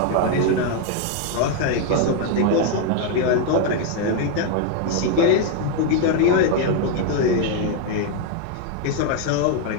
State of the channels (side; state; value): both; different; correlation 0.00